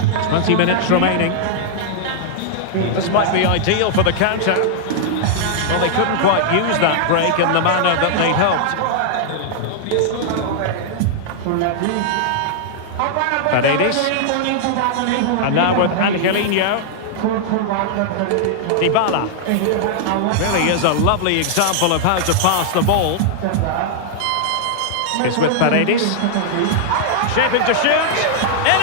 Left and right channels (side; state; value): both; different; correlation -0.01